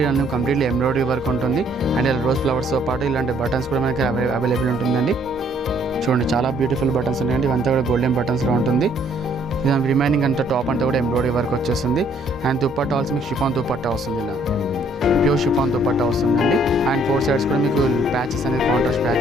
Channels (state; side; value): normal; both; correlation 0.64